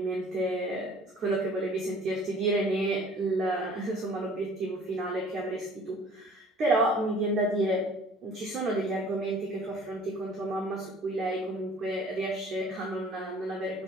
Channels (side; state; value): both; normal; correlation 0.51